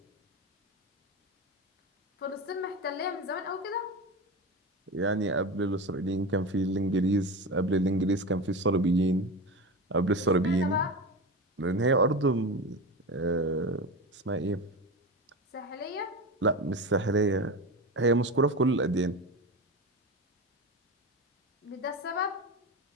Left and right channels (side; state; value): both; normal; correlation 0.24